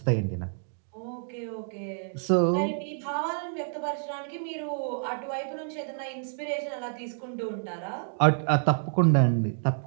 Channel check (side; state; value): left; silent; digital silence